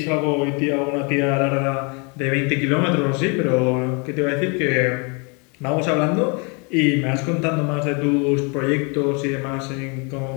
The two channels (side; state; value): right; quieter; 33.3 dB